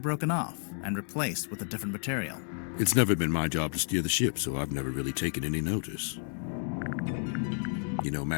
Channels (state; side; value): silent; right; 57 dB below the other